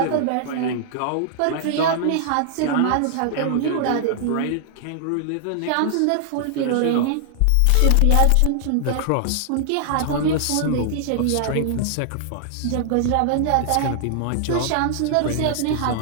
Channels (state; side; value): different; both; correlation -0.01